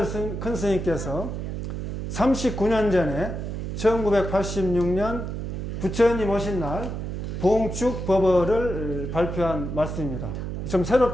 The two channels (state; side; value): noise; right; hum, 5 dB below the sound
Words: 큰 스님께서 39년 전에 1986년 부처님 오신 날 봉축 법어를 발표한 말씀입니다. 좀